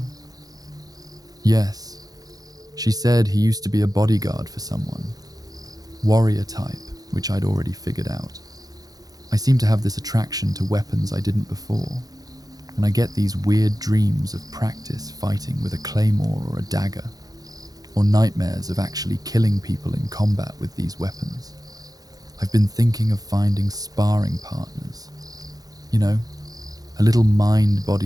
Yes. She said he used to be a bodyguard for someone. Warrior type, which I'd already figured out. I seem to have this attraction to weapons I didn't before, and I get these weird dreams of practice fighting with a claymore or a dagger, or nightmares of actually killing people in combat with these weapons. I've been thinking of finding sparring partners. You know, a little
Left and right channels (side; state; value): left; late; 0.18 ms